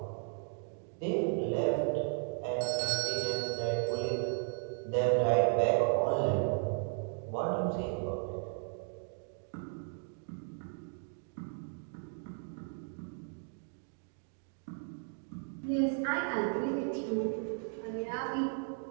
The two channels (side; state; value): left; silent; 54 dB below the other